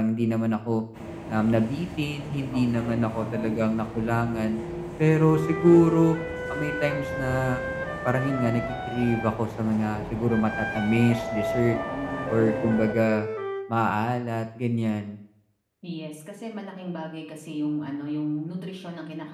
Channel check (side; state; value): both; identical; correlation 1.00